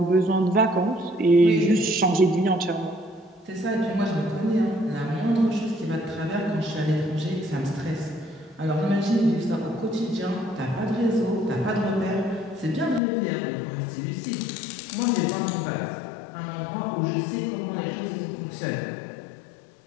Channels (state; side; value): drops out; right; at 13.0 s